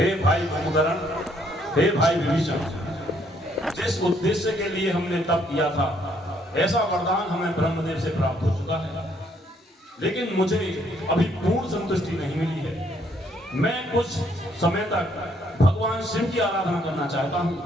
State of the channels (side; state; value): both; normal; correlation 0.68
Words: भाई कुंभकर्ण, हे भाई विभीषण, जिस उद्देश्य के लिए हमने तप किया था ऐसा वरदान हमें ब्रह्मदेव से प्राप्त हो चुका है, लेकिन मुझे अभी पूर्ण संतुष्टि नहीं मिली है। मैं कुछ समय तक भगवान शिव की आराधना करना चाहता